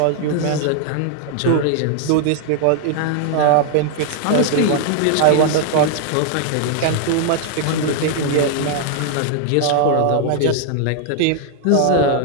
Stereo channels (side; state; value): both; different; correlation 0.00